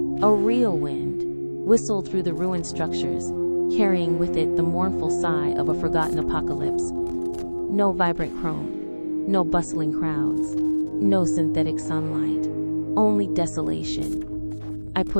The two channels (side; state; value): both; inverted; correlation -1.00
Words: a real wind, whistled through the ruined structures, carrying with it the mournful sigh of a forgotten apocalypse. No vibrant chrome, no bustling crowds, no synthetic sunlight, only desolation. I